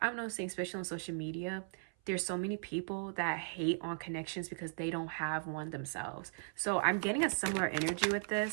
noticing, especially on social media, there's so many people that hate on connections because they don't have one themselves. So I'm getting a similar energy with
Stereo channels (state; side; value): silent; left; 53 dB below the other